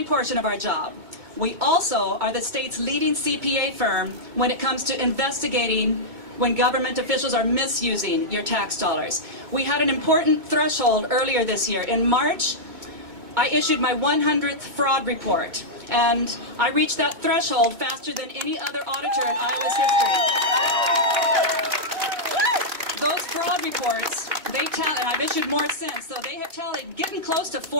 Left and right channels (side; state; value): left; late; 2.2 ms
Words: portion of our job. We also are the state's leading CPA firm when it comes to investigating when government officials are misusing your tax dollars. We had an important threshold earlier this year. In March, I issued my 100th fraud report, and I reached that threshold faster than any other auditor in Iowa's history. Those fraud reports, they tell, and I've issued more since, so they have tallied getting close to